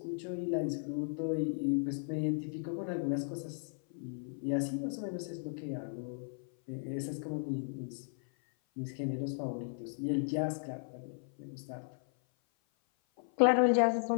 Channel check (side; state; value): right; silent; 54 dB below the other